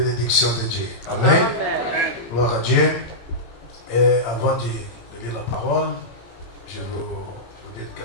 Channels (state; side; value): late; right; 18 ms